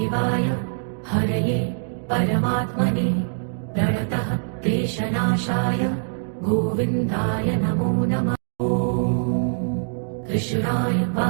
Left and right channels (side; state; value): left; silent; digital silence